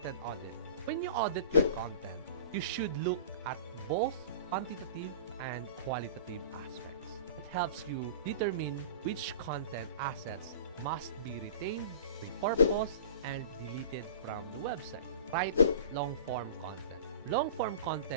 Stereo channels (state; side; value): inverted; both; correlation -0.40